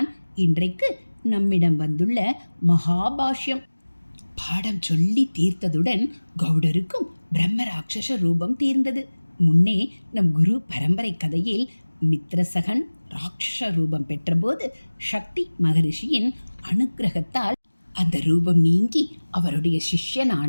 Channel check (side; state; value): both; inverted; correlation -1.00